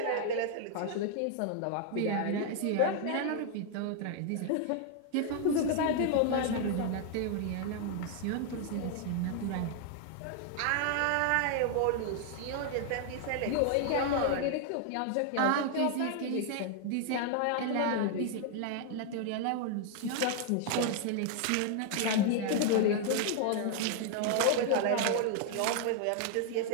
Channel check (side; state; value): both; different; correlation 0.00